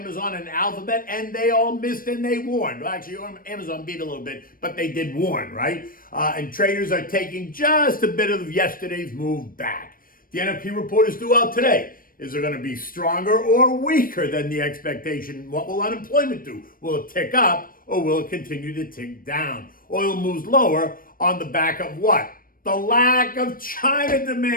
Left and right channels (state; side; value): late; right; 0.41 ms